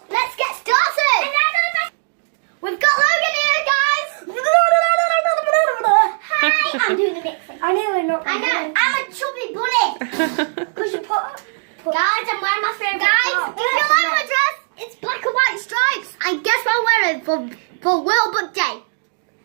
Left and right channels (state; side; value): silent; left; digital silence